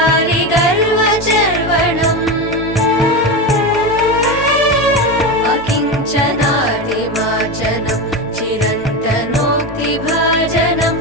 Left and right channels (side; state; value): both; normal; correlation 0.19